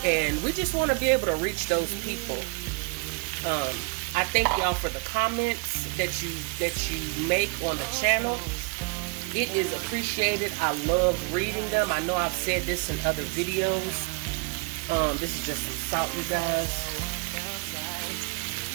and we just want to be able to reach those people. I thank y'all for the comments that you make on the channel. It is appreciated. I love reading them. I know I've said this in other videos. This is just some salt, you guys.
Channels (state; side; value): quieter; left; 30.7 dB